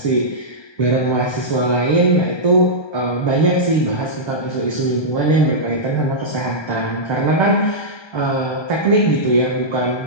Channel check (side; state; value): right; late; 1.2 ms